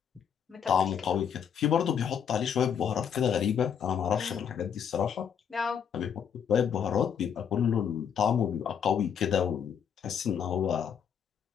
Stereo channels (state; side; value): quieter; right; 7.9 dB